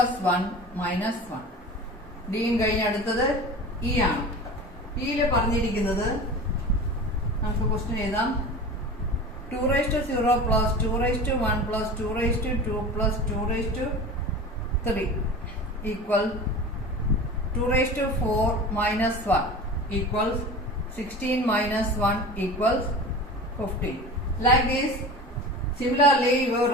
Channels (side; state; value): both; normal; correlation 0.34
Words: 1 minus 1. ഡിയും കഴിഞ്ഞ് അടുത്തത് ഇ ആണ്. ഇയില് പറഞ്ഞിരിക്കുന്നത് നമുക്ക് ക്വസ്റ്റ്യൻ എഴുതാം. 2 raised to 0 plus 2 raised to 1 plus 2 raised to 2 plus 2 raised to 3 equal 2 raised to 4 minus 1 equals 16 minus 1 equals 15. Like this, similarly you